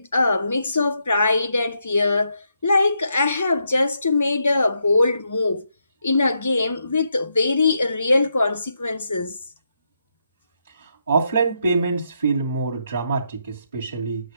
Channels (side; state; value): both; inverted; correlation -0.80